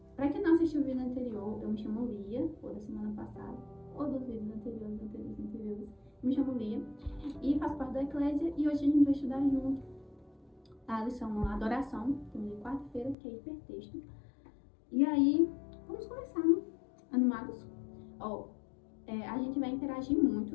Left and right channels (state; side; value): drops out; right; at 13.2 s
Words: para quem não assistiu o vídeo anterior, eu me chamo Lia, ou da semana passada, ou dos vídeos anteriores. Eu me chamo Lia e faço parte da Eclésia e hoje a gente vai estudar junto a lição Adoração, de quarta-feira, que é hipertexto. E aí, vamos começar, né? Animados? A gente vai interagir